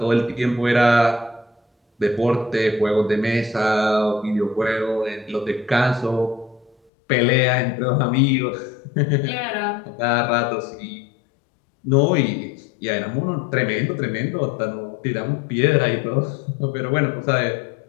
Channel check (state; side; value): drops out; right; at 6.8 s